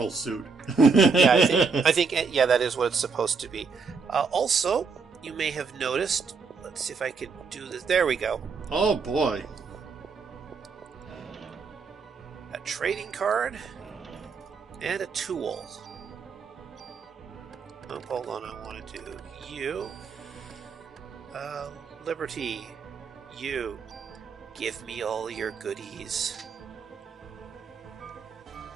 suit. Yeah, I think that is what it's supposed to be. Also, you may have noticed. Let's see if I can do this. There we go. Oh boy. A trading card and a tool. Oh, hold on, I want to do you. Liberty, you, give me all your goodies.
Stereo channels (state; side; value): quieter; left; 5.0 dB